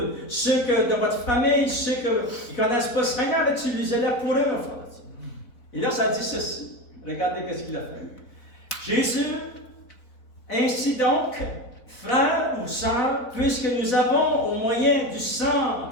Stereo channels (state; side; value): late; right; 4.1 ms